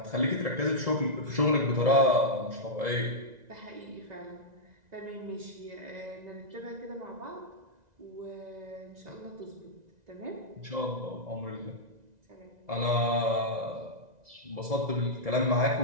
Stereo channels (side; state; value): left; late; 1.9 ms